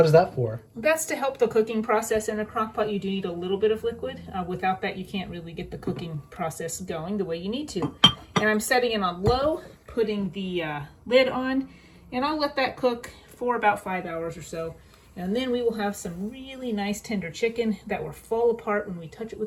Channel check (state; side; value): identical; both; correlation 1.00